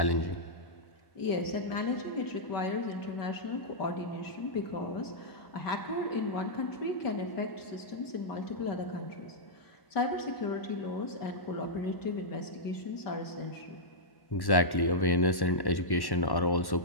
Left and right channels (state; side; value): late; right; 1.1 ms